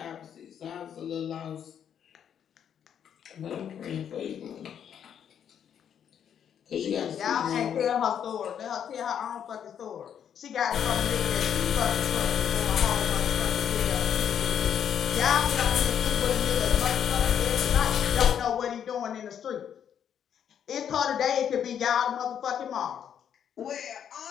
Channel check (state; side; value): quieter; right; 8.8 dB